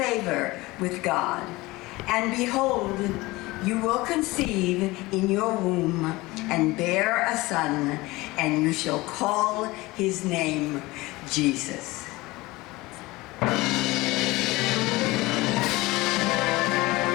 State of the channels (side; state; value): right; quieter; 21.0 dB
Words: with God. And behold, you will conceive in your womb and bear a son, and you shall call his name Jesus."